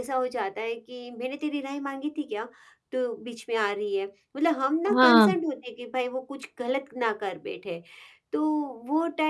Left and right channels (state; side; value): identical; both; correlation 1.00